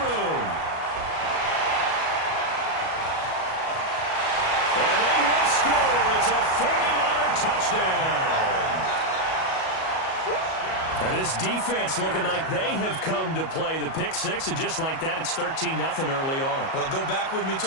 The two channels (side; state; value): right; late; 37 ms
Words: And they will score. It's a 49er touchdown. And this defense looking like they have come to play the pick six, and just like that, it's 13-0 early on. Well, go back with me